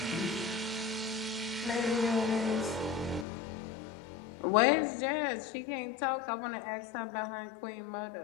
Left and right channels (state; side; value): drops out; right; at 3.2 s